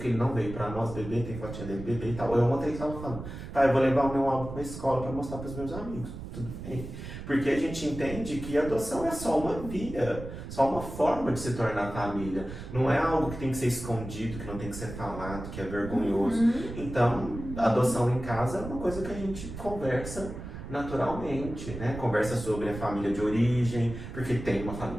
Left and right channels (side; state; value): right; noise; rumble, 10 dB below the sound